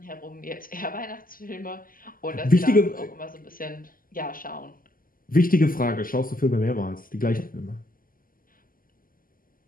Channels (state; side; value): late; right; 0.41 ms